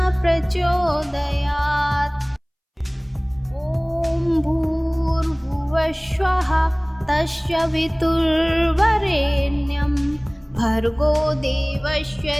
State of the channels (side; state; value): both; identical; correlation 1.00